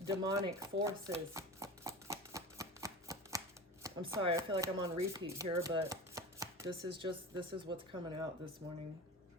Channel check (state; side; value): normal; both; correlation 0.31